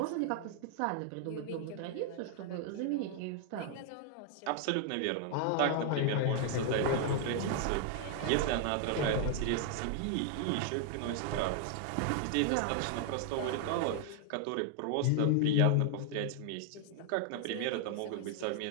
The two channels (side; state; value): both; different; correlation 0.00